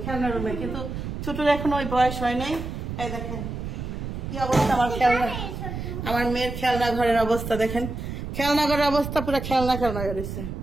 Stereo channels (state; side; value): noise; right; rumble, 6 dB below the sound